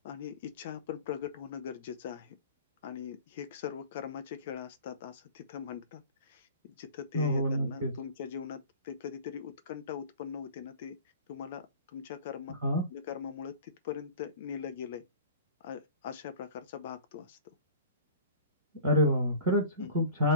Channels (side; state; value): both; inverted; correlation -0.40